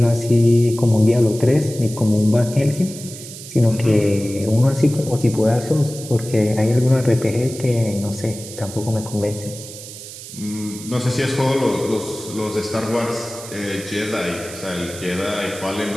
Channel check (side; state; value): right; noise; hiss, 13 dB below the sound